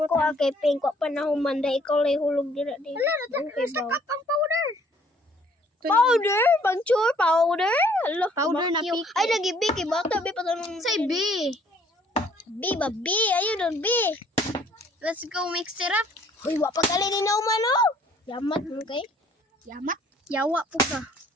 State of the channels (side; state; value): both; normal; correlation 0.60